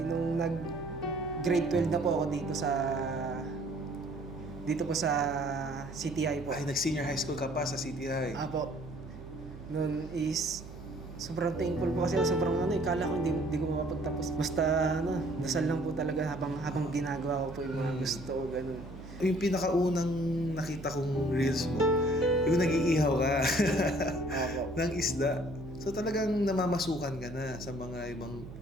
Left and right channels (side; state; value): right; noise; hum, 15 dB below the sound